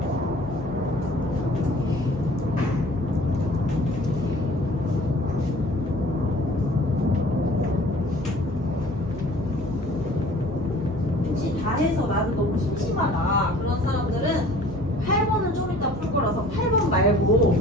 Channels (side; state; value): both; normal; correlation 0.50